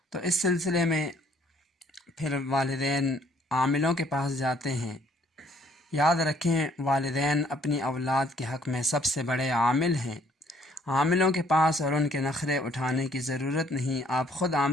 تو اس سلسلے میں پھر والدین عاملوں کے پاس جاتے ہیں۔ یاد رکھیں، والدین اپنی اولاد کے حق میں سب سے بڑے عامل ہیں۔ عاملوں کے پاس اور ان کے نخرے اٹھانے کی ضرورت نہیں، آپ خود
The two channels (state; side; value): normal; both; correlation 0.63